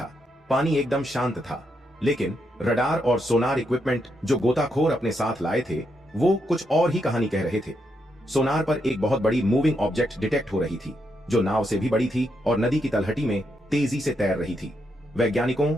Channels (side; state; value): both; normal; correlation 0.80